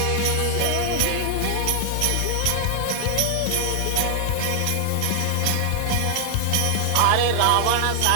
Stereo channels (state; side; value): different; both; correlation 0.00